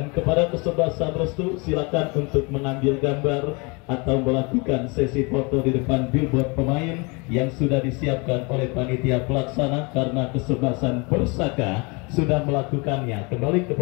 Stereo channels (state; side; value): quieter; right; 29.6 dB